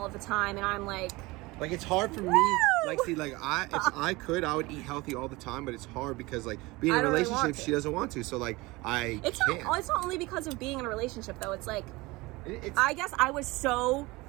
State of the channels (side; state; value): left; quieter; 22.2 dB